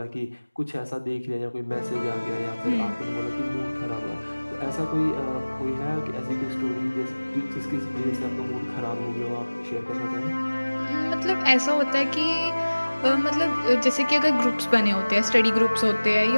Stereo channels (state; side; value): inverted; both; correlation -1.00